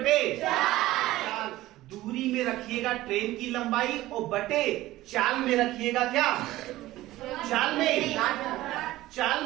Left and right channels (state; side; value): quieter; left; 16.5 dB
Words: चाल। दूरी में रखिएगा ट्रेन की लंबाई और बटे चाल में रखिएगा क्या? चाल